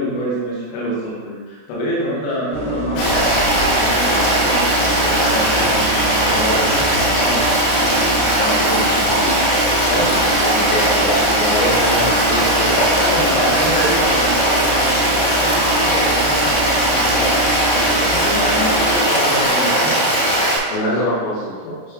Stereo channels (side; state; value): right; late; 32 ms